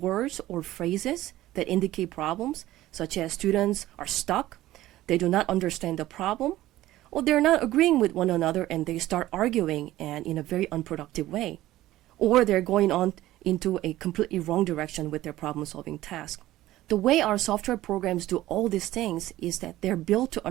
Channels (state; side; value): quieter; left; 15.5 dB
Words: words or phrases that indicate problems, such as students are stuck, they do not understand the problem, or they're not agreeing with one another and they start arguing and in a very unproductive way. Or they're going on into a completely wrong direction with their problem-solving task. The way our software programs do all these things is that they're built to